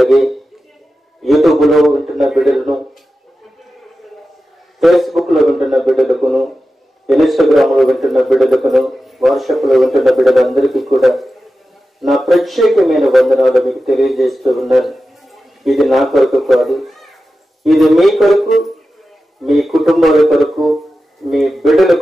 యూట్యూబ్ లో వింటున్న బిడ్డలను, ఫేస్బుక్ లో వింటున్న బిడ్డలకును, ఇన్స్టాగ్రామ్ లో వింటున్న బిడ్డలకును, వాట్సాప్ లో వింటున్న బిడ్డలందరికీ కూడా నా ప్రత్యేకమైన వందనాలు మీకు తెలియజేస్తూ ఉన్నాను. ఇది నా కొరకు కాదు, ఇది మీ కొరకు, మీ కుటుంబాల కొరకు, మీ బిడ్డల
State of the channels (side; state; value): both; normal; correlation 0.93